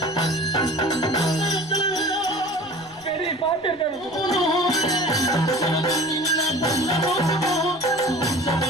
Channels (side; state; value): right; noise; rumble, 29 dB below the sound